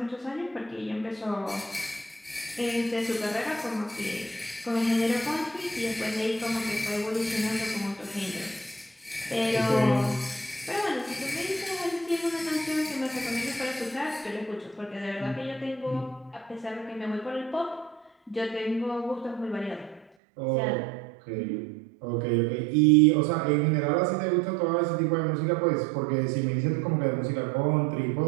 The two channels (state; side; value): drops out; left; at 20.1 s